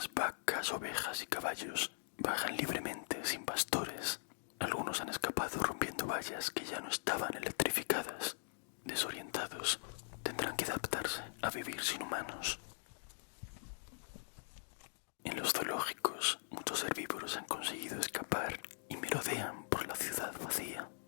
vacas, ovejas y caballos bajan libremente sin pastores. Algunos han escapado rompiendo vallas que ya no estaban electrificadas. Desorientados, tendrán que adaptarse a vivir sin humanos. En los zoológicos, muchos herbívoros han conseguido escapar y merodean por la ciudad vacía.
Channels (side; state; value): right; silent; digital silence